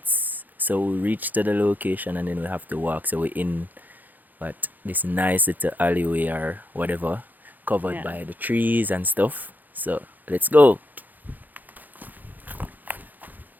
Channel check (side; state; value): left; late; 0.084 ms